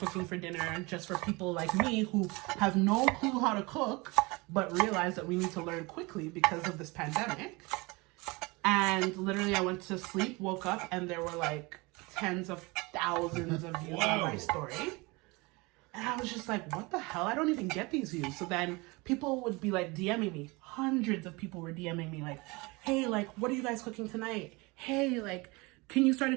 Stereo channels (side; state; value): left; quieter; 25.3 dB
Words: for dinner, just for people like me who have no clue how to cook, but realize that we need to learn quickly because of this pandemic. And literally I went to sleep, woke up, and there were tens of thousands of views on my story. And I was just like, what the hell? I don't even get these views. So then people would be like DMing me. Hundreds of people were DMing me like, hey, like, what are you guys cooking tonight? Hey, like, can you start